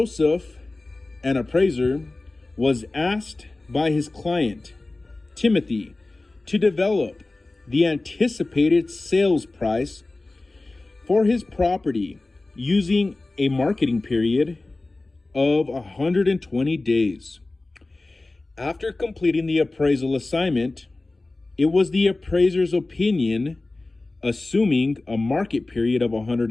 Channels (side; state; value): right; quieter; 3.1 dB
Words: an appraiser, was asked by his client, Timothy, to develop the anticipated sales price for his property using a marketing period of 120 days. After completing the appraisal assignment, it was the appraiser's opinion, assuming a market period of